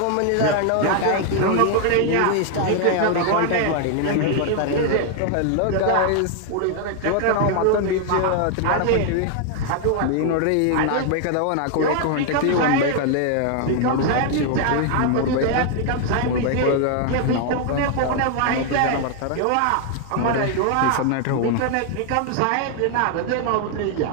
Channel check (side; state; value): both; different; correlation 0.00